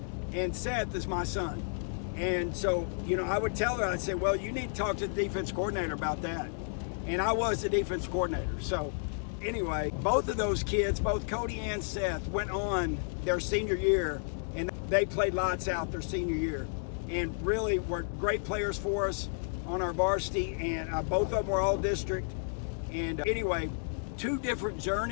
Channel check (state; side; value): silent; right; digital silence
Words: and Seth is my son. And so, I would tell her, I'd say, "Well, you need to talk to the defense coordinator about that." And I was the defense coordinator. So anyway, both of those kids, both Cody and Seth, went on their senior year, and they played lights out their senior year and really were great players for us on our varsity. And both of them were all district. And anyway, two different